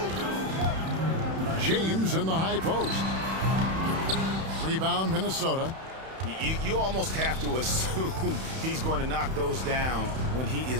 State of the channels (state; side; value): late; left; 31 ms